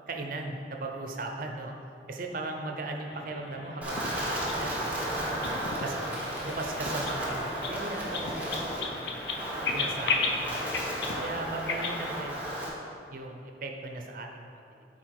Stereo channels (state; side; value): normal; both; correlation 0.15